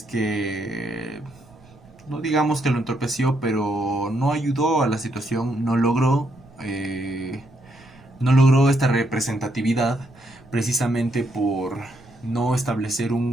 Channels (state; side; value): noise; right; rumble, 25 dB below the sound